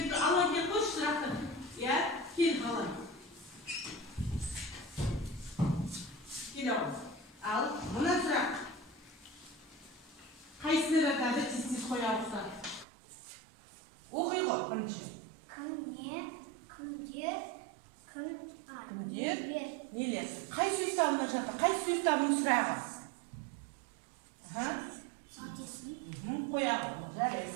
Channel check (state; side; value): drops out; left; at 12.9 s